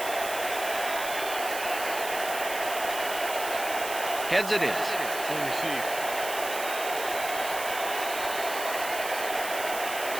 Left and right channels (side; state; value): right; noise; hiss, 8 dB below the sound